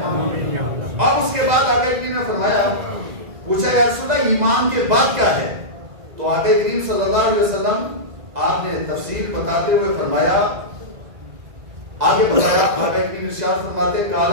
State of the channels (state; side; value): late; left; 2.0 ms